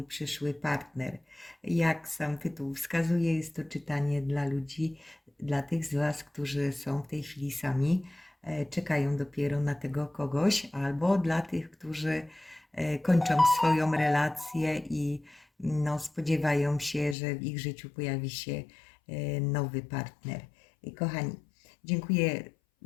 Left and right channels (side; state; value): right; drops out; at 17.2 s